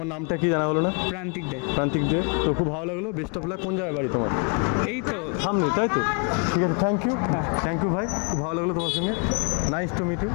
নামটা কি জানা হলো না? প্রান্তিক দে। তো খুব ভালো লাগলো, বেস্ট অফ লাক। কোন জায়গায় বাড়ি তোমার? এই তো সামনে, তাই তো? ঠিক আছে, থ্যাংক ইউ ভাই, খুব ভালো লাগলো তোমার সঙ্গে। Nice to meet you.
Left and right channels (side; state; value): right; quieter; 36.8 dB